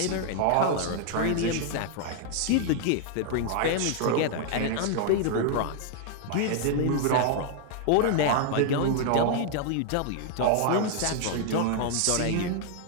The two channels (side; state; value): both; different; correlation 0.00